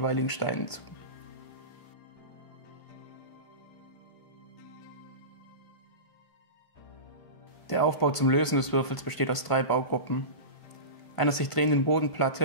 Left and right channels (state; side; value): late; right; 1.5 ms